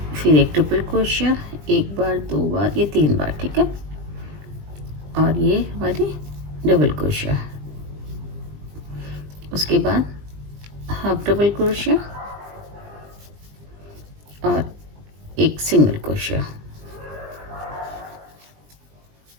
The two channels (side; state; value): left; late; 20 ms